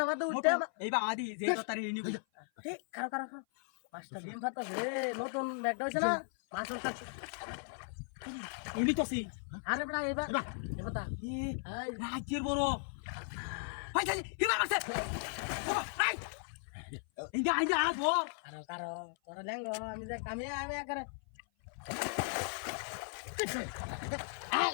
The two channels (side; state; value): right; silent; 53 dB below the other